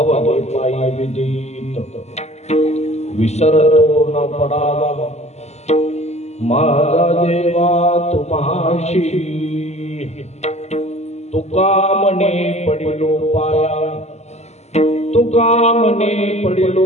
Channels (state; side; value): late; right; 0.32 ms